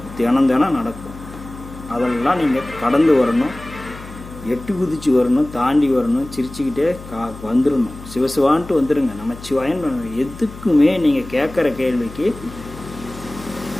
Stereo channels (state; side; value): noise; left; hum, 15 dB below the sound